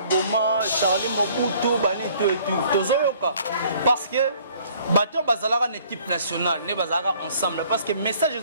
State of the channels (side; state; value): both; inverted; correlation -0.57